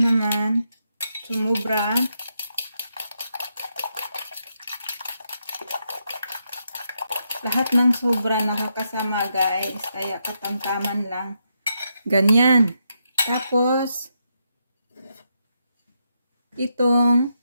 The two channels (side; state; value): both; inverted; correlation -0.81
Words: sumubra. Lahat ng sobra nakakasama guys. Kaya katamtaman lang. Ganyan. Tapos, itong